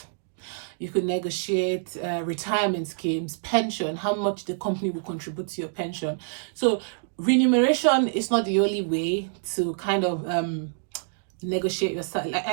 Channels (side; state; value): left; silent; digital silence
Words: You could negotiate retirement schemes, pension, how much the company will contribute to your pension. So remuneration is not the only way to kind of negotiate your salary. Like, I